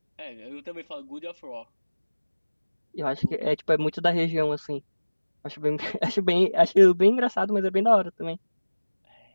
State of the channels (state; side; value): inverted; both; correlation -1.00